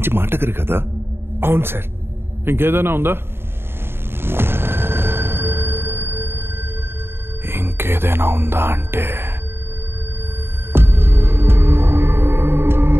మాటగారు కదా? అవును సార్. ఇంకేదైనా ఉందా? ఇంకేదైనా ఉందా అంటే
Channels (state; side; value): late; left; 0.11 ms